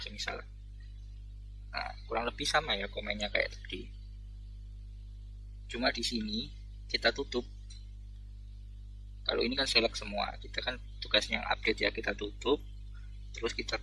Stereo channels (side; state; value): both; identical; correlation 1.00